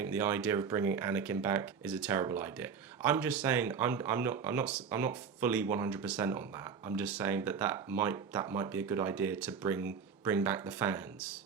the idea of bringing Anakin back is a terrible idea? I'm just saying, I'm not fully 100% on that. I'm just saying that might be a good idea to bring back the fans,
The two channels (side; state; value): left; quieter; 6.3 dB